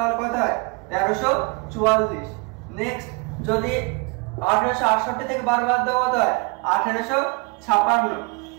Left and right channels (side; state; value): left; quieter; 29.2 dB